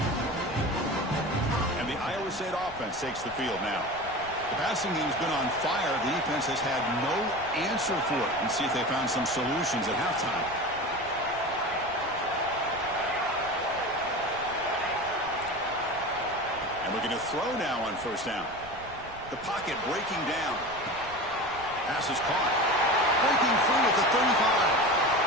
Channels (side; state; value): right; noise; rumble, 19 dB below the sound